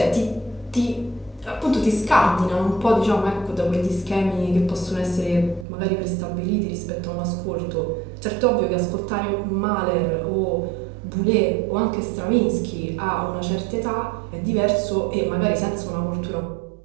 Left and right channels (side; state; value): left; drops out; at 5.7 s